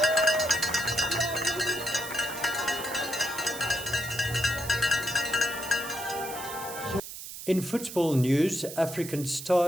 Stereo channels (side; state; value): right; noise; hiss, 10 dB below the sound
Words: In football news, African